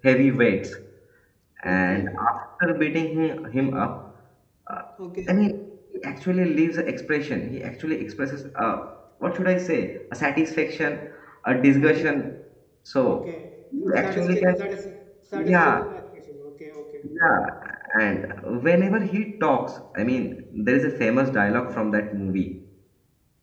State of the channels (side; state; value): both; identical; correlation 1.00